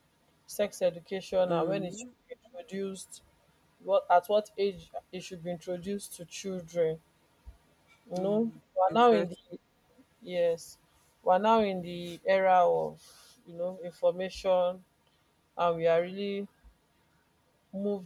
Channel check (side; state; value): both; identical; correlation 1.00